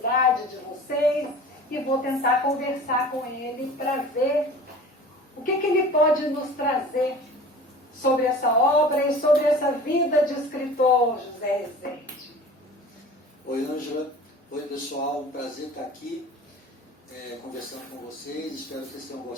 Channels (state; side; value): normal; both; correlation 0.41